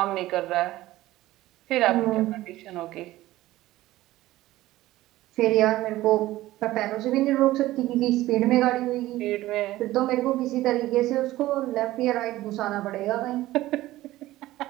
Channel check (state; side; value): quieter; left; 16.4 dB